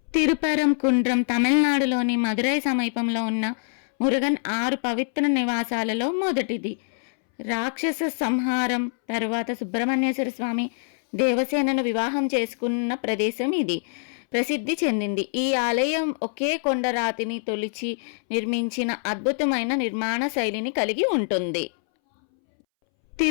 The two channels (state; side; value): silent; right; 62 dB below the other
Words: తిరుపరంకుండ్రం తమిళనాడులోని మదురై సమీపంలో ఉన్న మురుగన్ 6 పవిత్ర నివాసాలలో మొదటిది. రాక్షస సంహారం తరువాత సుబ్రహ్మణ్యేశ్వర స్వామి దేవసేనను వివాహం చేసుకున్న ప్రదేశం ఇది. ప్రసిద్ధి చెందింది. ఈ ఆలయం ఒకే కొండరాతిని తొలిచి నిర్మించిన అద్భుతమైన నిర్మాణ శైలిని కలిగి ఉంటుంది.